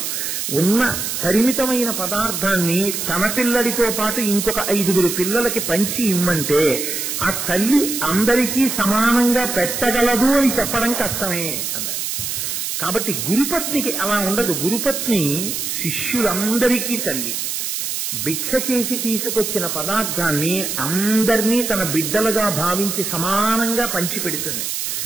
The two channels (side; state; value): right; noise; hiss, 3 dB below the sound